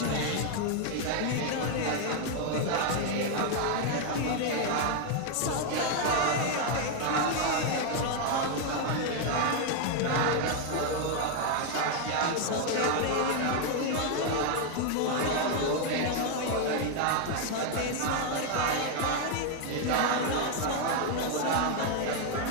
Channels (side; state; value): both; different; correlation 0.01